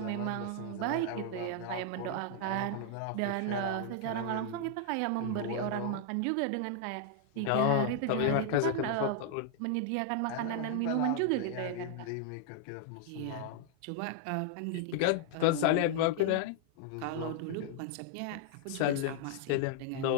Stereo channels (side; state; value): both; different; correlation 0.00